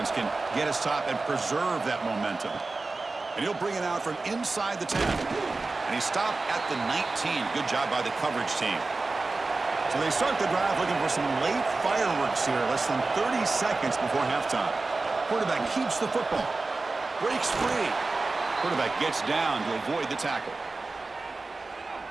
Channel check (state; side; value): quieter; left; 3.6 dB